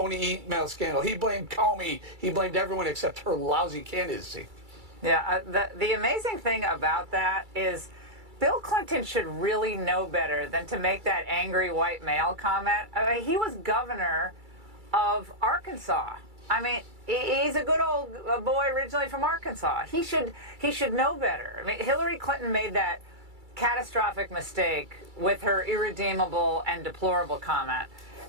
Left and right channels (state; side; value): late; left; 2.3 ms